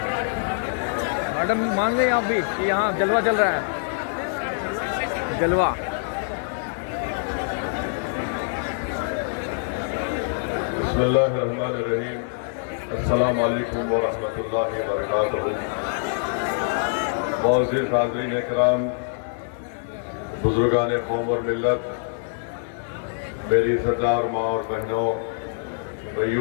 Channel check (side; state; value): right; silent; digital silence